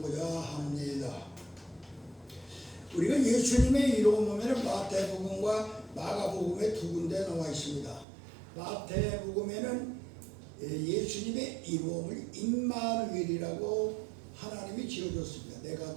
합니다. 우리가 예수님의 이름 보면 마태복음과 마가복음에 두 군데 나와 있습니다. 마태복음에는 예수님의 이름을 임마누엘이라고 하나님이 지어줬습니다. 내가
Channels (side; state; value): left; drops out; at 8.1 s